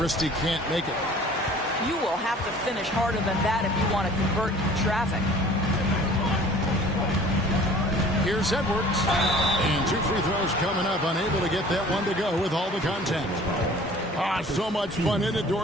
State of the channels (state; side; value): normal; both; correlation 0.48